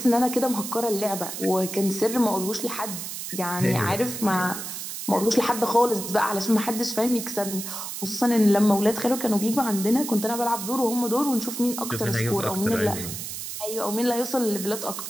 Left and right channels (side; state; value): right; noise; hiss, 7 dB below the sound